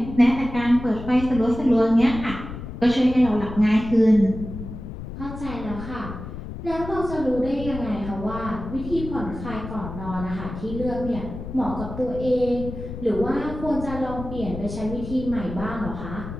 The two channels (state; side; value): noise; left; rumble, 9 dB below the sound